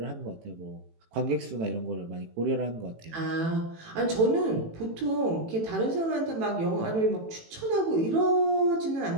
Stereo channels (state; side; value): late; left; 18 ms